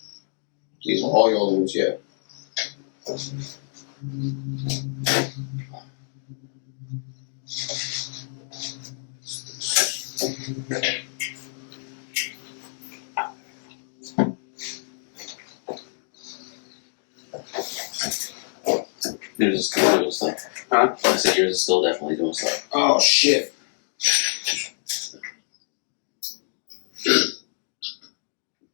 These are all your old ones, yeah. yours is still doing stuff. Huh? I said yours is still definitely doing stuff. Oh shit.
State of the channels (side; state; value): right; silent; 57 dB below the other